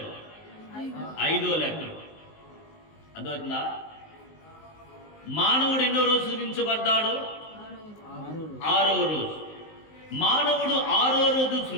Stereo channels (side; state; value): right; late; 19 ms